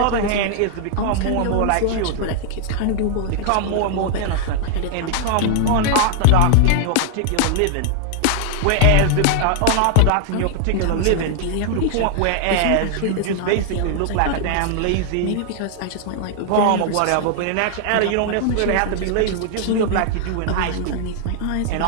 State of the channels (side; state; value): both; different; correlation 0.00